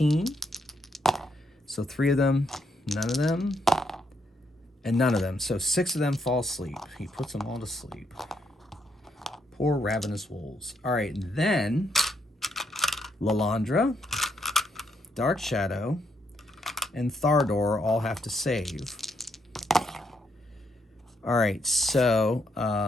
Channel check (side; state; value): both; normal; correlation 0.77